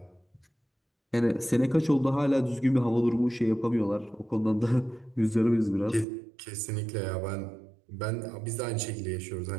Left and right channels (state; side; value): drops out; left; at 6.1 s